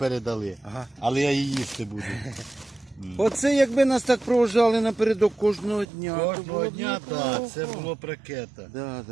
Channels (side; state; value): left; drops out; at 5.9 s